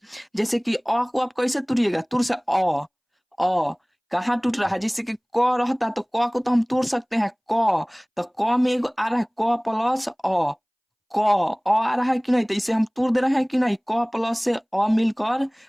जैसे कि अ को आप कैसे तोड़िएगा, तुर से अ कहाँ टूट रहा है। जैसे कि क रहता तो क को तो हम तोड़ सकते हैं, क तो क में एगो आ रहा है क प्लस क आ रहा है कि नहीं, तो इसे हम तोड़ दे रहे हैं कि नहीं। क प्लस से मिलकर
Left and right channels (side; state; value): both; identical; correlation 1.00